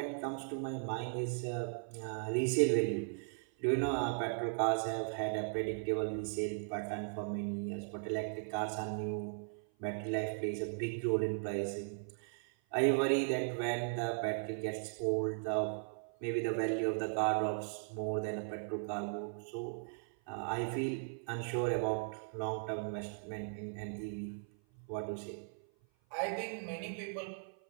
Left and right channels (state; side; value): silent; left; 53 dB below the other